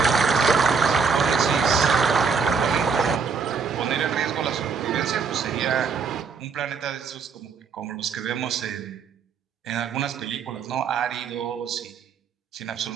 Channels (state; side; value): quieter; left; 5.5 dB